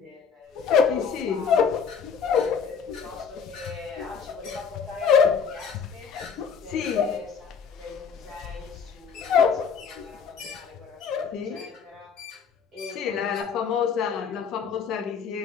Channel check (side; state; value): right; quieter; 6.3 dB